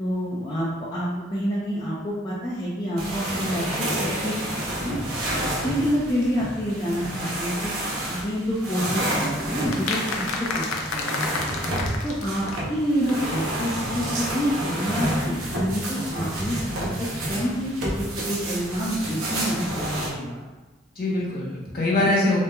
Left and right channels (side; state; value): both; normal; correlation 0.59